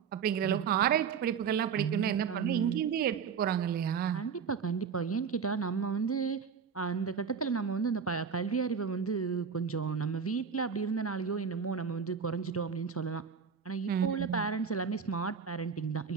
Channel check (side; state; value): left; quieter; 6.5 dB